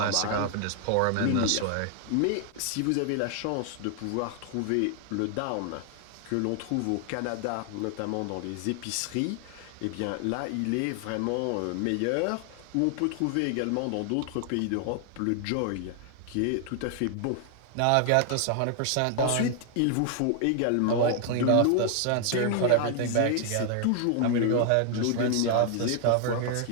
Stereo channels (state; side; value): different; both; correlation 0.00